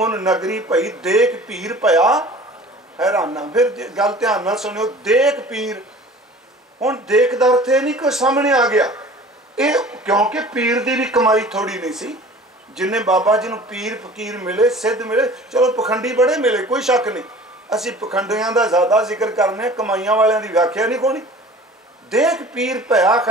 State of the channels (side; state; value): both; normal; correlation 0.44